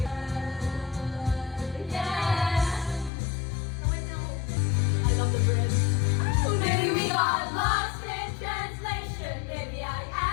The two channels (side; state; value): right; drops out; at 3.1 s